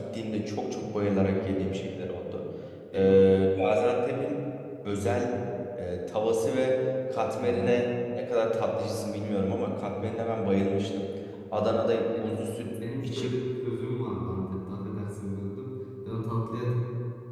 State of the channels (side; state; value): both; identical; correlation 1.00